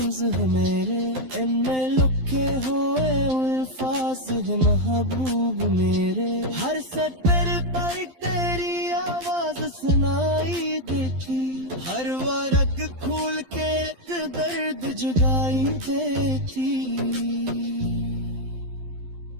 है मेरे, इनमें लुके हुए अल्फाज है महबूब मेरे। हर सतर पर तेरी आवाज सुनाई देती, हर वर्ग खोल के एक दर्द जुगाई देती।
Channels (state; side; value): late; left; 12 ms